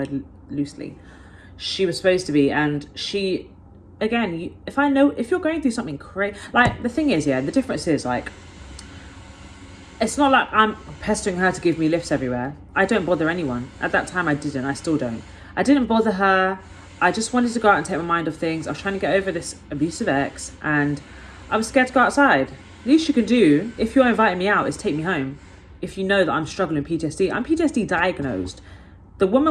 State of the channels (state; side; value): identical; both; correlation 1.00